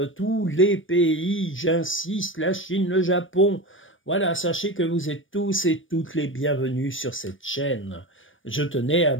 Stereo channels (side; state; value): right; late; 0.57 ms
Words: tous les pays, j'insiste, la Chine, le Japon. Voilà, sachez que vous êtes tous et toutes les bienvenus sur cette chaîne. Je tenais à